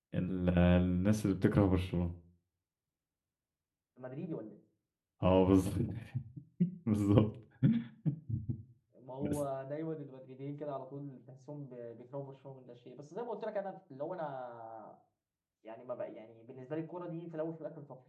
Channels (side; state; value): both; identical; correlation 1.00